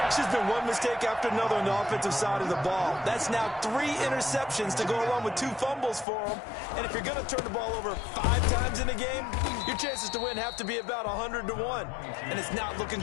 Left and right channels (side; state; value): right; drops out; at 6.1 s